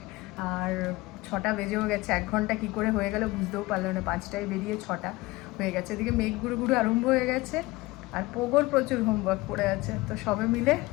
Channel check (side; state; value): right; quieter; 20.7 dB